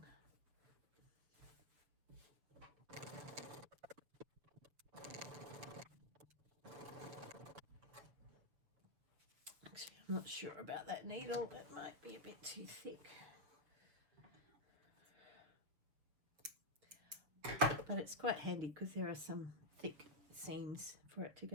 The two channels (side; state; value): left; late; 7.1 ms